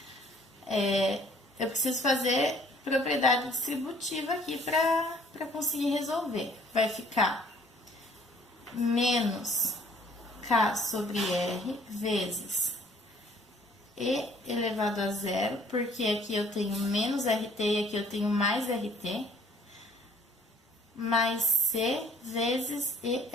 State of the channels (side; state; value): both; normal; correlation 0.58